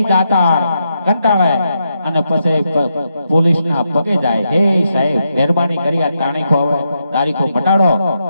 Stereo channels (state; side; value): inverted; both; correlation -0.82